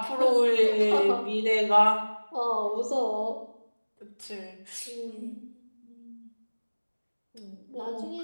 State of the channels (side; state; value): both; inverted; correlation -1.00